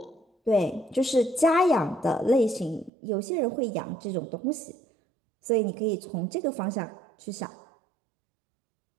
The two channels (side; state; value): left; drops out; at 2.9 s